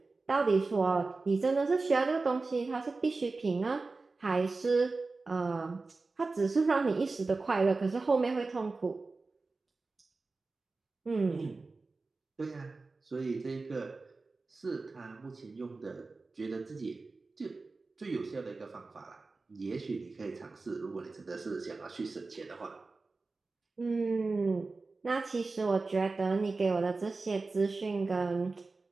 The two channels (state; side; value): quieter; left; 3.7 dB